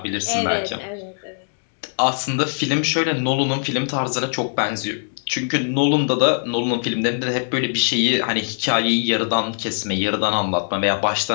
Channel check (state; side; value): silent; right; digital silence